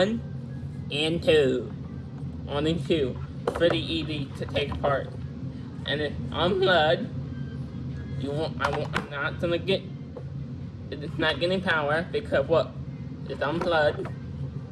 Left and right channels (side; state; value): both; identical; correlation 1.00